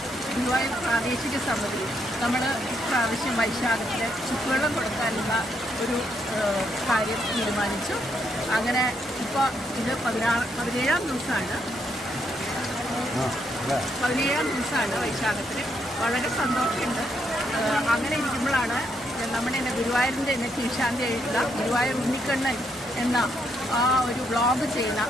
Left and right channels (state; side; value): normal; both; correlation 0.76